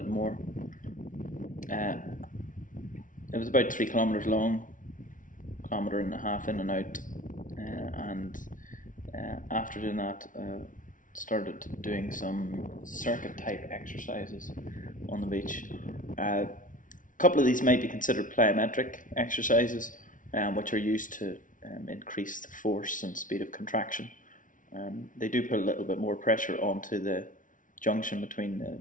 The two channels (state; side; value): late; right; 0.38 ms